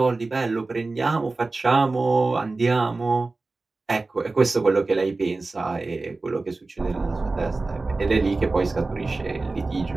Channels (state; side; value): quieter; left; 3.5 dB